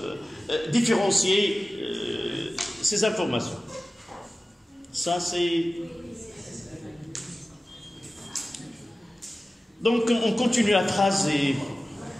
différencier ces informations. Ça, c'est... Donc, on continue la phrase et...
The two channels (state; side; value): normal; both; correlation 0.96